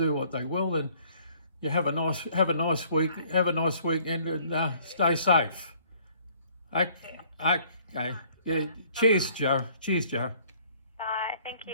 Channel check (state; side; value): inverted; both; correlation -0.59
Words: what they will. And you have a nice week, have a nice weekend, and stay safe. Okay. Yeah. Cheers, Joe. Cheers, Joe. Bye. Thank